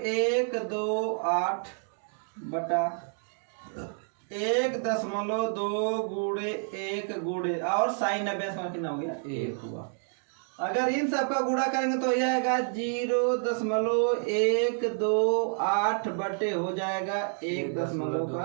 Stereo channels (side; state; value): left; silent; 59 dB below the other